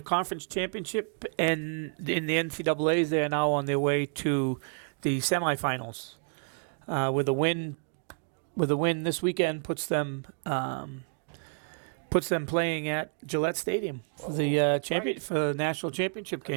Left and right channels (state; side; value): silent; left; 58 dB below the other